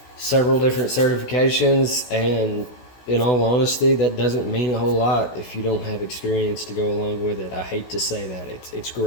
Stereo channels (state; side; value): late; right; 16 ms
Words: several different certifications, and in all honesty, that doesn't mean a whole lot if you don't have experience to go along with it. I hate to say that. It's